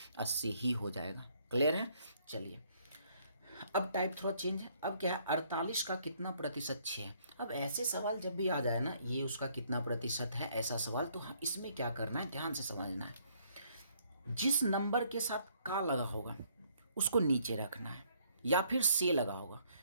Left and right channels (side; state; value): both; inverted; correlation -0.66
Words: 80 ही हो जाएगा। क्लियर है। चलिए अब टाइप थोड़ा चेंज है, अब क्या है 48 का कितना प्रतिशत 6 है। अब ऐसे सवाल जब भी आ जाए ना, ये उसका कितना प्रतिशत है ऐसा सवाल, तो इसमें क्या करना है, ध्यान से समझना है। जिस नंबर के साथ का लगा होगा उसको नीचे रखना है या फिर से लगा होगा।